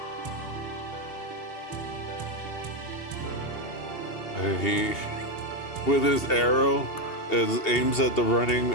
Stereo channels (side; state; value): right; late; 2.8 ms